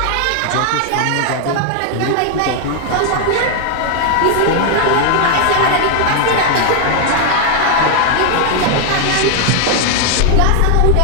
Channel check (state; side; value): different; both; correlation 0.00